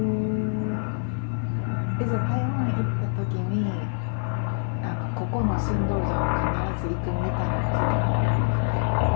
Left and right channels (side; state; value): right; silent; 61 dB below the other